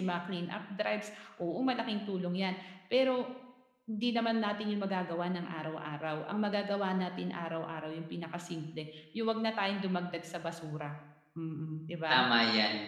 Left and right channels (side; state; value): both; identical; correlation 1.00